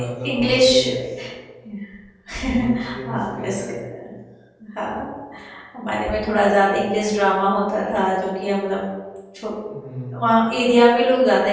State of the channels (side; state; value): both; identical; correlation 1.00